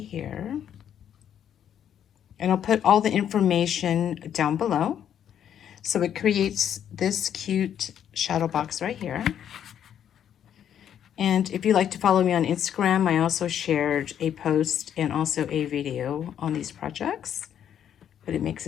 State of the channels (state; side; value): quieter; right; 9.5 dB